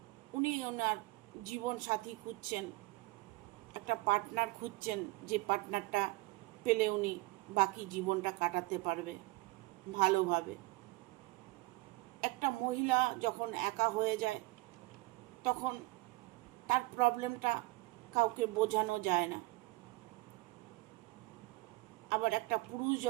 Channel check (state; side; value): quieter; left; 21.2 dB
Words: উনি ওনার জীবন সাথী খুঁজছেন, একটা পার্টনার খুঁজছেন, যে পার্টনারটা পেলে উনি বাকি জীবনটা কাটাতে পারবে ভালোভাবে। একটা মহিলা যখন একা হয়ে যায়, তখন তার প্রবলেমটা কাউকে বোঝানো যায় না। আবার একটা পুরুষ